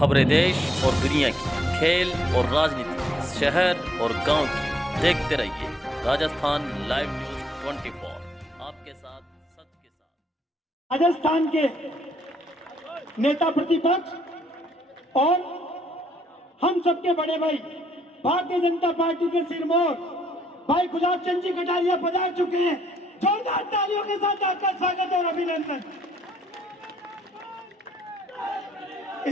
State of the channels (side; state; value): both; normal; correlation 0.71